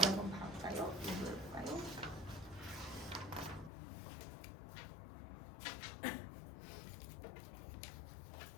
한번 볼까요? 이거 볼까요?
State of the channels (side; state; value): right; drops out; at 3.7 s